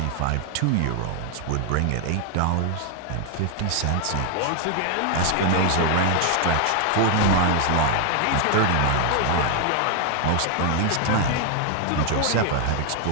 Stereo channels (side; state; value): both; different; correlation 0.00